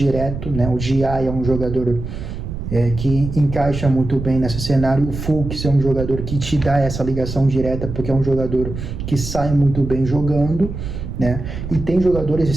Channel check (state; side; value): noise; right; rumble, 7 dB below the sound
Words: né? O Gia é um jogador que encaixa muito bem nesse cenário. O Fux é um jogador que te dá essa ligação direta, porque é um jogador que sai muito bem jogando, né? E tem jogadores